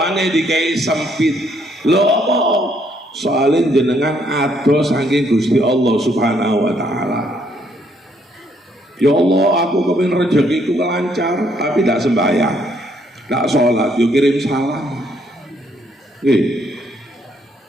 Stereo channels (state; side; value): normal; both; correlation 0.70